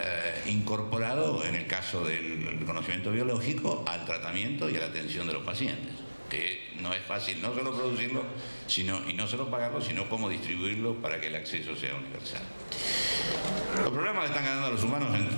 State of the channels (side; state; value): both; inverted; correlation -1.00